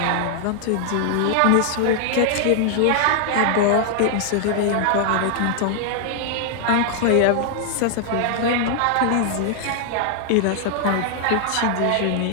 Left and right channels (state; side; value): different; both; correlation 0.00